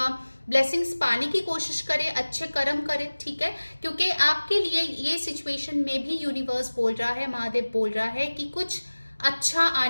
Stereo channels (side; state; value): both; inverted; correlation -1.00